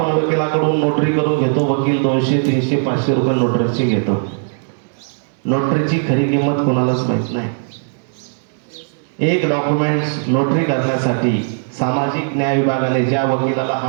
वकिलाकडून नोटरी करून घेतो. वकील 200, 300, 500 रुपये नोटरीची घेतो. नोटरीची खरी किंमत कोणालाच माहित नाही. एक डॉक्युमेंट्स नोटरी करण्यासाठी सामाजिक न्याय विभागाने ज्या वकिलाला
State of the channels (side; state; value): left; silent; digital silence